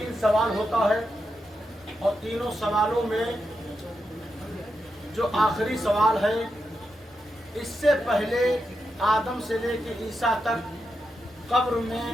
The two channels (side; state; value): both; normal; correlation 0.86